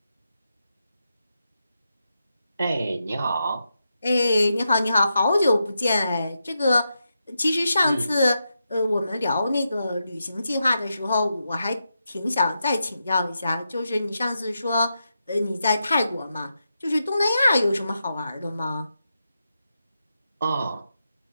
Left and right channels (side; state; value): both; inverted; correlation -0.86